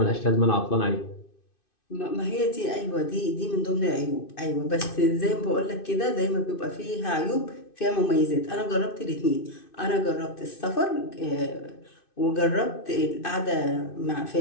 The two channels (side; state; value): right; late; 2.6 ms